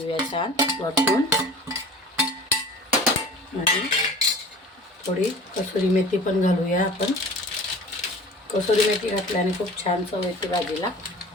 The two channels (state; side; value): normal; both; correlation 0.41